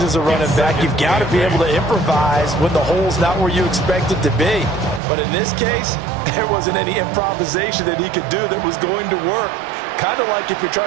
as a running back, you've got to be able to improvise when the hole's not where you expect it to be. But in this case, there wasn't any improvisation that he could do that was going to work. Kind of like if you're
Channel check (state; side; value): drops out; left; at 5.0 s